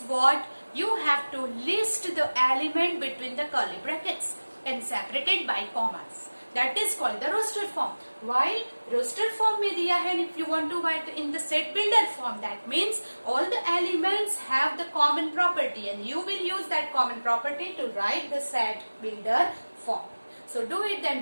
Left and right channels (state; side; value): inverted; both; correlation -1.00